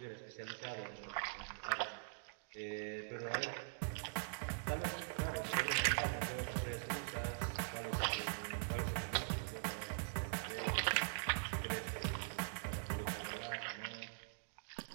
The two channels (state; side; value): silent; left; digital silence